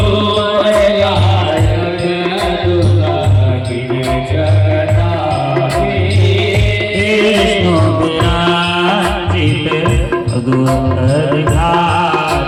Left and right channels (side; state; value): both; identical; correlation 1.00